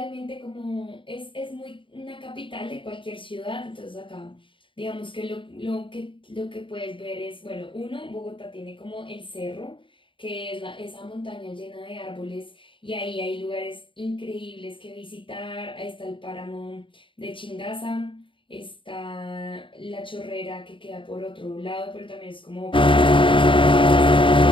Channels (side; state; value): right; late; 0.25 ms